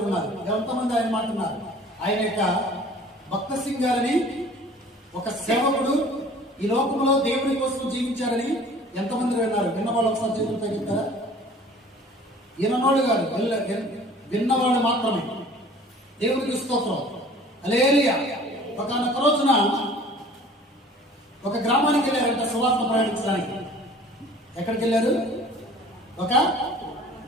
ఉన్నారు. ఎంతమంది ఆయన మాట్లాడుతున్నారు? ఆయన యొక్క భక్త సింగ్ గారని ఒక సేవకుడు ఈ లోకంలో దేవుని కోసం జీవించారని ఎంతమంది విన్నారు? విన్నవాళ్ళు ఒకసారి చేతులు తగ్గిస్తారా? విన్నవాళ్ళు కాదు, విన్నవాళ్ళు మాత్రమే. దేవునికి స్తోత్రం. హల్లెలూయా. ఒకనొక రోజున ఒక గ్రామానికి వెళ్ళారంట సువార్త ప్రయాణించడానికి. ఎక్కడికి వెళ్ళారు? ఒక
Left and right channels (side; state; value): both; normal; correlation 0.48